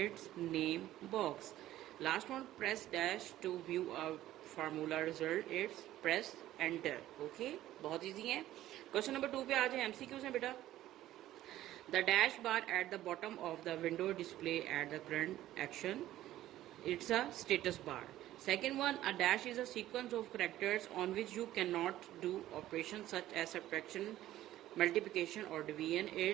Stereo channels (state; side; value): quieter; left; 14.1 dB